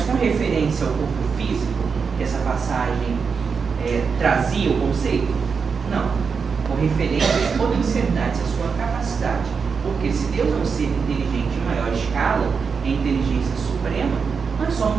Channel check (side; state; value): left; quieter; 5.6 dB